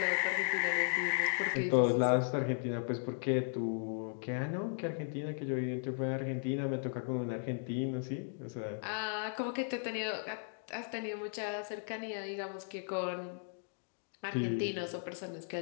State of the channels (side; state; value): right; silent; digital silence